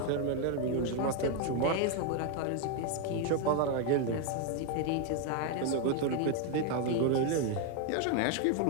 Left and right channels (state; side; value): different; both; correlation 0.01